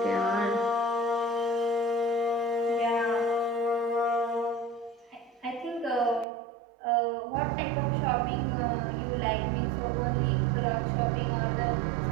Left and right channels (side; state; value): left; drops out; at 6.2 s